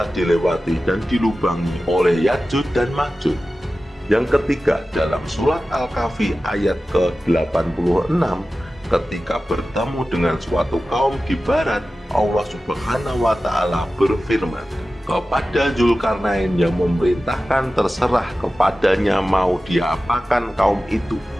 dilewati dan dilubangi oleh Ya'juj dan Ma'juj. Yang ketiga, dalam surat Al-Kahfi ayat ke-86, ketika bertemu dengan suatu kaum di barat, Allah Subhanahu wa Ta'ala berfirman kepada Zulkarnain yang memerintahkan terserah kepadanya mau diapakan kaum itu.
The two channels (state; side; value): normal; both; correlation 0.95